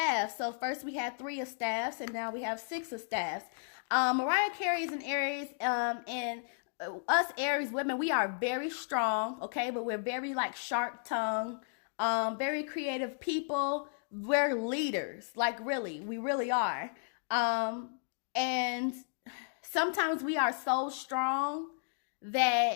So first we had 3 of staffs, and now we have 6 of staffs. Mariah Carey is an Aries, and us Aries women, we are very strong, okay? But we're very like sharp-tongued, very creative people. We're leaders, like really, we really are. And sometimes we are so strong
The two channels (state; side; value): silent; right; digital silence